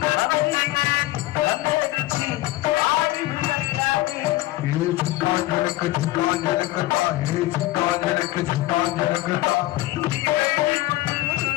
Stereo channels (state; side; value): quieter; right; 17.8 dB